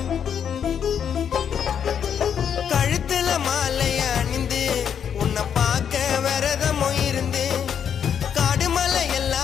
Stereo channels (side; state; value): right; quieter; 8.1 dB